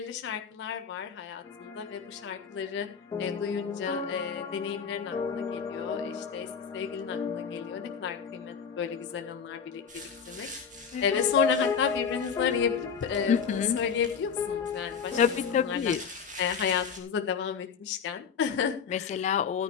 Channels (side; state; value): right; quieter; 6.6 dB